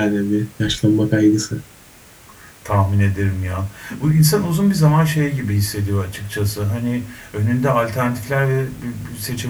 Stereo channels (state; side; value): identical; both; correlation 1.00